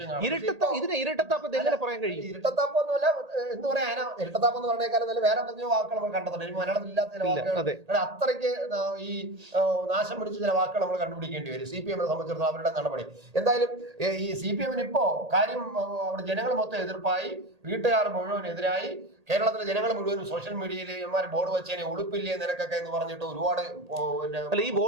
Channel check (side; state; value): left; late; 1.8 ms